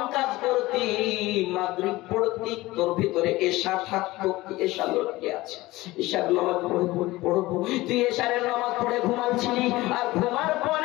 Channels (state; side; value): quieter; right; 19.0 dB